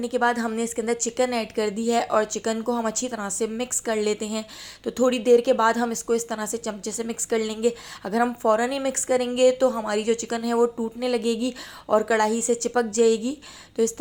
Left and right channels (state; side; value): identical; both; correlation 1.00